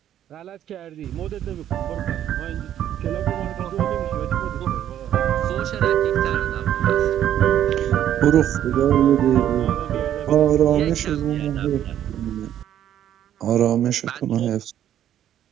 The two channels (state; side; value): quieter; left; 10.9 dB